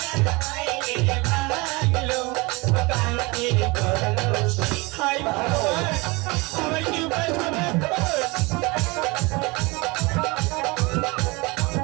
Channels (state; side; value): quieter; left; 25.4 dB